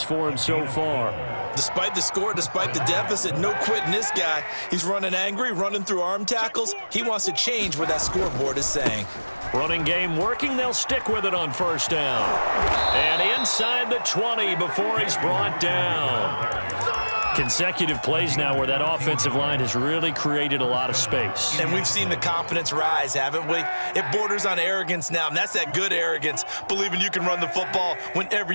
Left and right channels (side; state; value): both; inverted; correlation -1.00